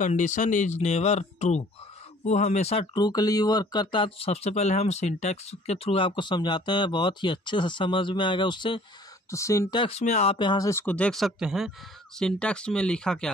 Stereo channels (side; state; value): both; normal; correlation 0.54